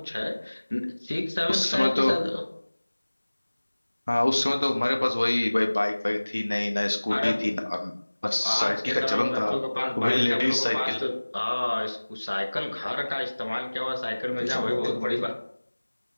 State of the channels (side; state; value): both; inverted; correlation -1.00